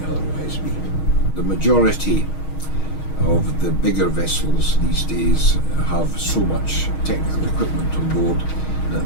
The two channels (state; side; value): late; right; 6.4 ms